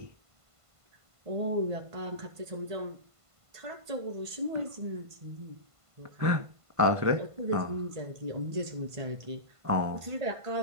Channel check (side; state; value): left; late; 1.5 ms